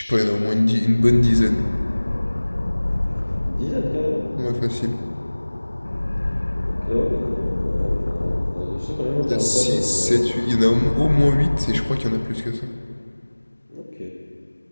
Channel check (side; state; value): both; inverted; correlation -1.00